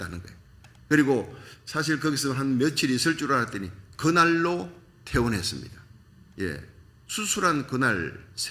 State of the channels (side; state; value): both; identical; correlation 1.00